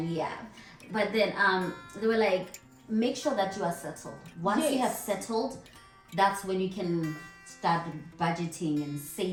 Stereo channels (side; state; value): both; identical; correlation 1.00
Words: they were like, make sure that you are settled. Once you have settled, that's when you can start budgeting and